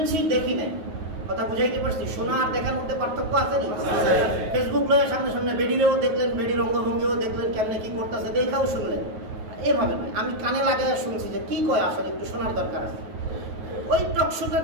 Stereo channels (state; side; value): late; left; 9.3 ms